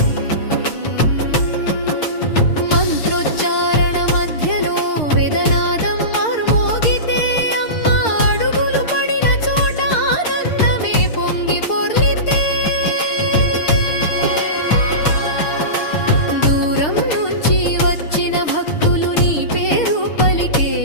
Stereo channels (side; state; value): right; late; 6.6 ms